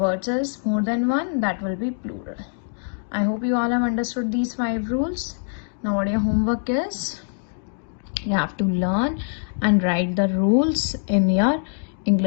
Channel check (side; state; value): right; silent; digital silence